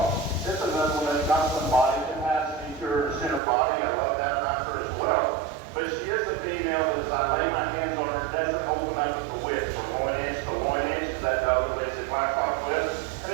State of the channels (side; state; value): left; drops out; at 3.4 s